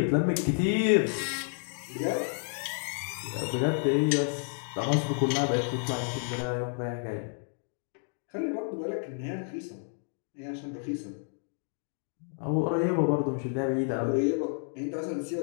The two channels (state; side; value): silent; right; 58 dB below the other